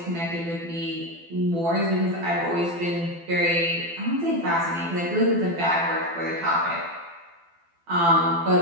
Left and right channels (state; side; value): late; left; 12 ms